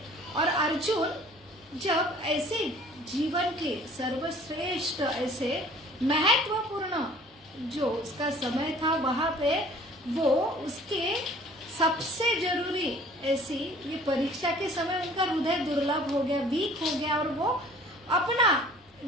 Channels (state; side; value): normal; both; correlation 0.51